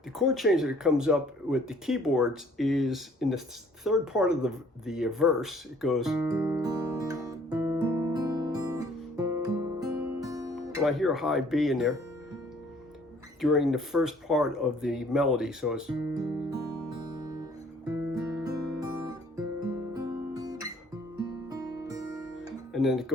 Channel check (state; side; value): normal; both; correlation 0.58